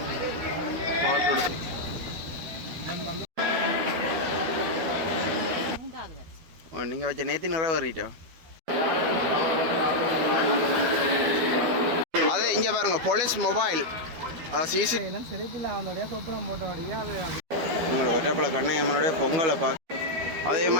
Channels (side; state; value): left; late; 12 ms